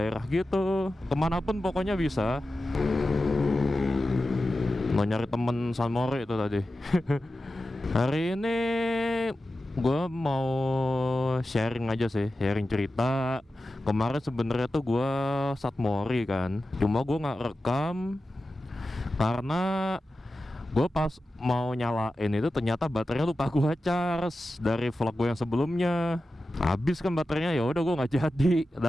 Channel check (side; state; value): both; normal; correlation 0.93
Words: gitu, kemanapun pokoknya bisa. Mau nyari temen San Mori itu tadi. Hari ini gue mau sharing aja sih, sharing cerita. Kemarin sebenarnya tuh gue San Mori kan, cuma gue nggak rekam karena gue pas mau nyalain itu ternyata baterainya lupa gue charge dari vlog gue yang sebelumnya. Habis kan baterainya, ya udah gue nggak jadi.